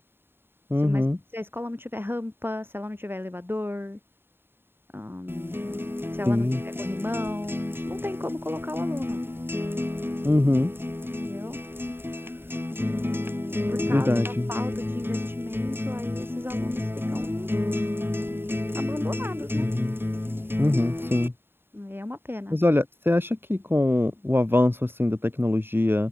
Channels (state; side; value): late; left; 0.11 ms